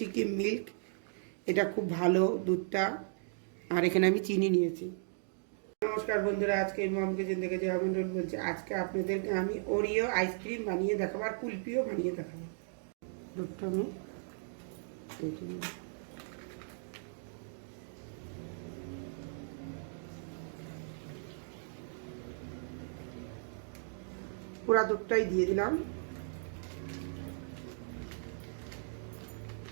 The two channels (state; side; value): silent; left; digital silence